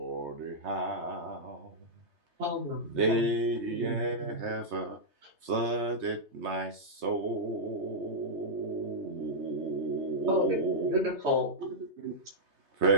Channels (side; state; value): left; late; 3.3 ms